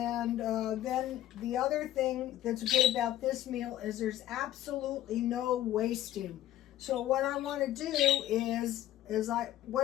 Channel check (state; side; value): quieter; right; 13.4 dB